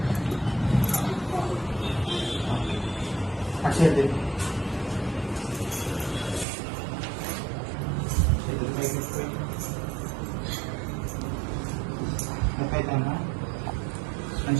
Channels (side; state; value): left; drops out; at 6.5 s